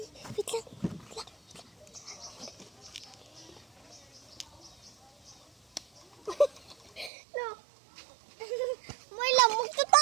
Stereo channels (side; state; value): left; drops out; at 7.1 s